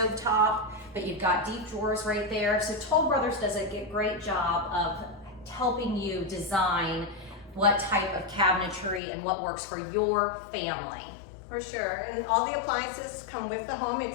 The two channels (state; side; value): drops out; right; at 9.0 s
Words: top, but you've got deep drawers right there. So Toll Brothers does a great job of helping you design what type of cabinetry and what works for your family. For sure, and all the appliances come with the home